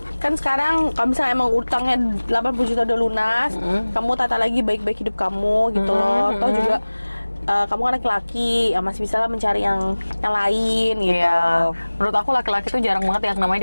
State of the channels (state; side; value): inverted; both; correlation -1.00